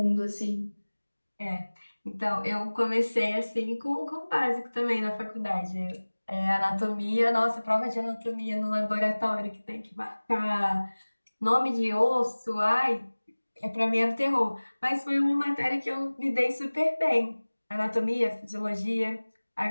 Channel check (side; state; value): both; inverted; correlation -1.00